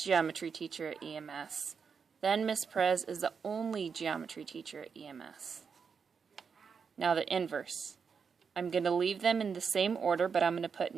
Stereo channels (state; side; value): quieter; left; 6.0 dB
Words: geometry teacher at EMS, then Miss Perez is the only geometry teacher at EMS. Now the inverse. I'm going to leave them in the same order, but I'm going to put